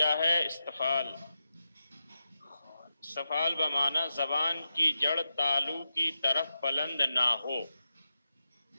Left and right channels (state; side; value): inverted; both; correlation -0.89